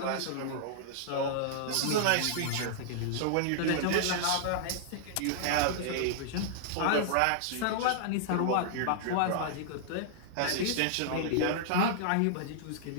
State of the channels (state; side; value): different; both; correlation -0.01